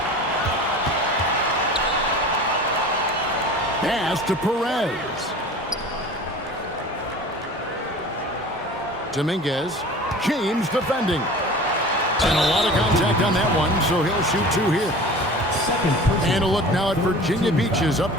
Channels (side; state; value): both; normal; correlation 0.40